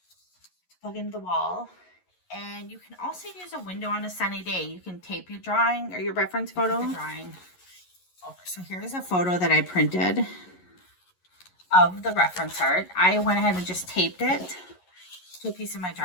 plug into the wall. And you can also use a window on a sunny day. You can tape your drawing or your reference photo. Drawing over. So here's a photo that I printed of the reference art. I went ahead and just taped it to a piece of my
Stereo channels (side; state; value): right; late; 11 ms